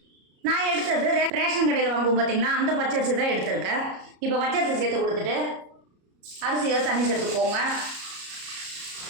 நான் எடுத்தது ரேஷன் கடையில் வாங்குவோம் பார்த்தீங்களா, அந்த பச்சரிசி தான் எடுத்திருக்கேன். இப்போ பச்சரிசி சேர்த்து கொடுத்துட்டு அரிசியை தண்ணி சேர்த்துக்கோங்க.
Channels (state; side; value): late; left; 33 ms